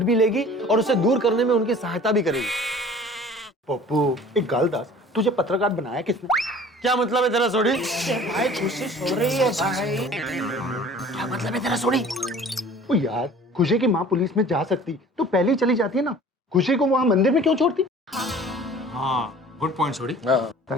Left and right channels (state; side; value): normal; both; correlation 0.47